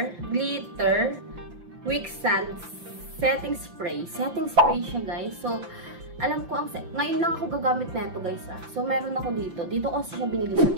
Quicksand setting spray siya guys. So alam ko ngayon lang ako gagamit na ito guys. So meron ako dito ko siya binili sa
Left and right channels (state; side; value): late; left; 5.9 ms